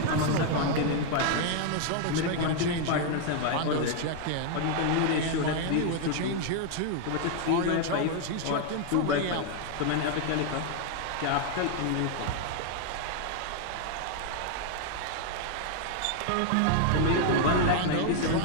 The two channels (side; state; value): both; different; correlation 0.00